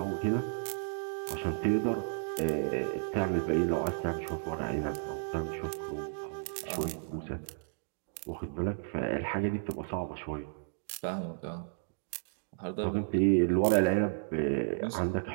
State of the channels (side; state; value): left; silent; digital silence